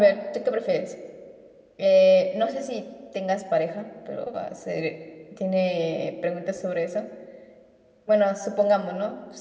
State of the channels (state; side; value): identical; both; correlation 1.00